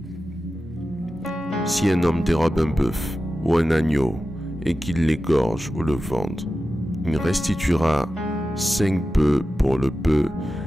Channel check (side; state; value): both; normal; correlation 0.93